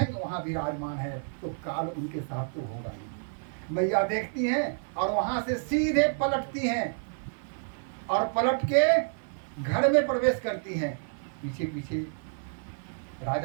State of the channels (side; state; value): left; silent; 58 dB below the other